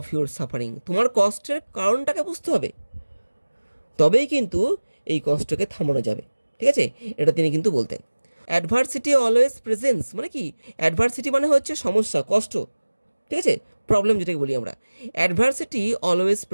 your suffering, তোমার কষ্টের কারণটাকে বুঝতে হবে, তবেই কিন্তু এই কষ্টকে থামানো যাবে, ঠিক আছে, এটা তিনি কিন্তু বলতেন। অ্যাডভার্সিটি অলওয়েজ প্রেজেন্স মানে কি, অ্যাডভার্সিটি মানে হচ্ছে সমস্যা কষ্ট, ঠিক আছে, প্রবলেম যেটাকে বলি আমরা। অ্যাডভার্সিটি অলওয়েজ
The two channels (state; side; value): inverted; both; correlation -1.00